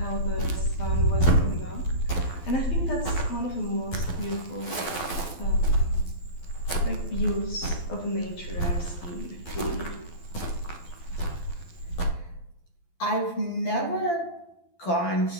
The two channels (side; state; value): right; late; 12 ms